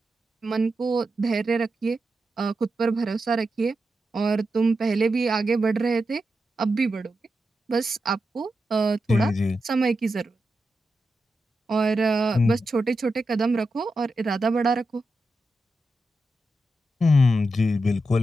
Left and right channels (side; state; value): both; normal; correlation 0.88